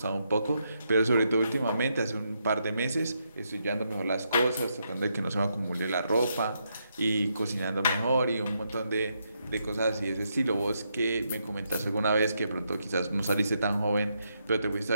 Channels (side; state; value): both; inverted; correlation -0.80